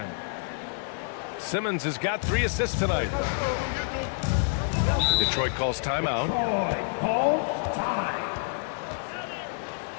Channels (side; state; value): right; silent; digital silence